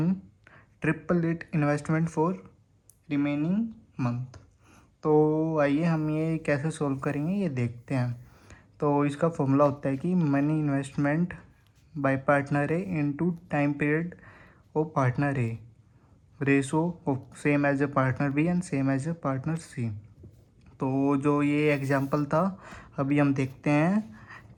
triple it investment for remaining month. तो आइए हम ये कैसे सॉल्व करेंगे ये देखते हैं। तो इसका फॉर्मूला होता है कि money investment by partner A into time period of partner A ratio of same as A partner B and same as A partner C. तो जो ये एग्जांपल था अभी हम देखते हैं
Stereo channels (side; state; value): both; identical; correlation 1.00